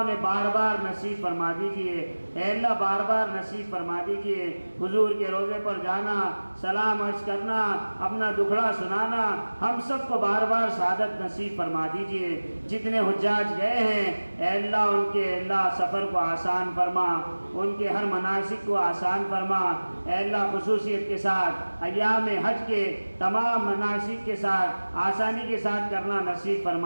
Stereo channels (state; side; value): inverted; both; correlation -1.00